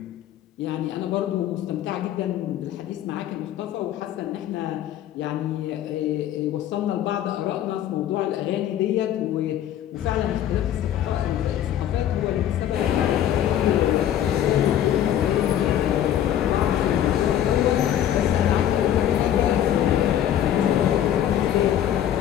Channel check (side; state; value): right; quieter; 11.0 dB